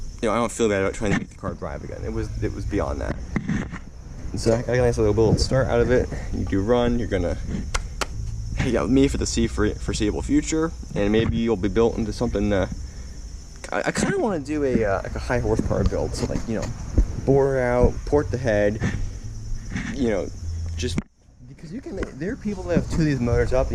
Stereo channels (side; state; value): both; identical; correlation 1.00